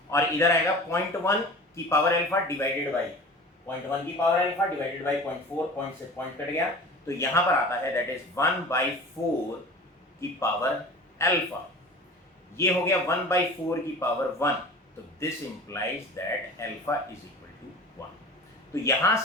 और इधर आएगा 0.1 की पावर अल्फा डिवाइडेड बाई 0.1 की power alpha divided by 0.4, point से पॉइंट कट गया, तो यहाँ पर आता है दैट इज 1/4 की पावर अल्फा। ये हो गया 1/4 की पावर 1, तो this implies that alpha is equal to 1। तो यहाँ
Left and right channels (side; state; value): both; normal; correlation 0.38